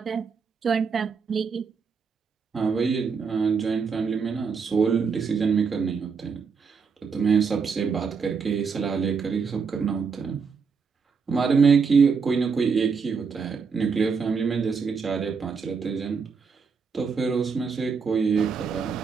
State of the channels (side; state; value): left; quieter; 5.6 dB